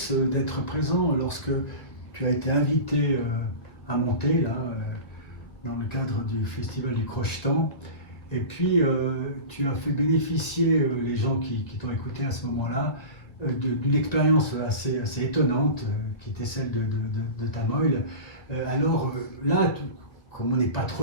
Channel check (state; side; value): late; right; 1.7 ms